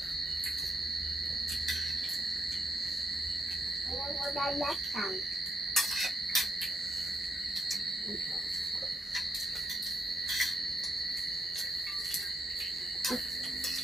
Yang udah datang.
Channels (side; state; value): both; normal; correlation 0.79